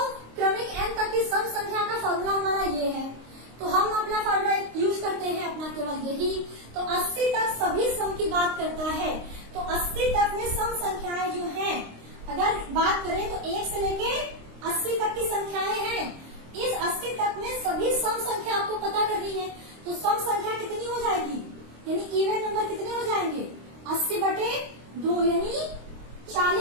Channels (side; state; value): left; late; 26 ms